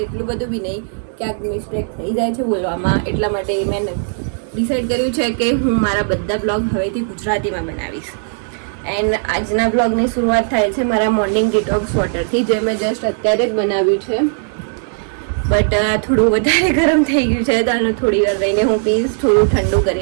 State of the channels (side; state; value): left; silent; 68 dB below the other